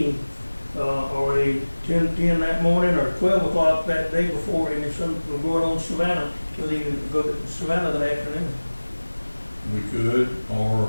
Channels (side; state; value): both; inverted; correlation -1.00